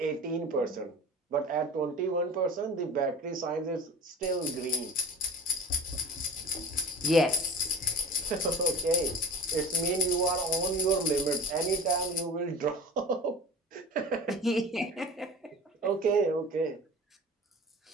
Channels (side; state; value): both; normal; correlation 0.38